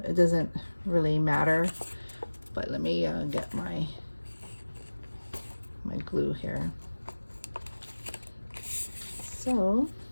It doesn't really matter. But let me get my glue here. So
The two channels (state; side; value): inverted; both; correlation -1.00